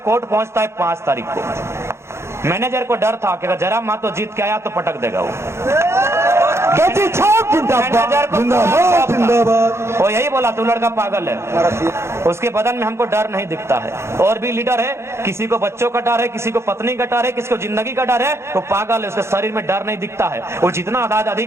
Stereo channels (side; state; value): left; late; 0.13 ms